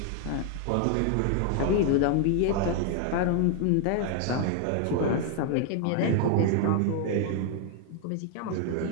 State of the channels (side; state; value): both; different; correlation 0.00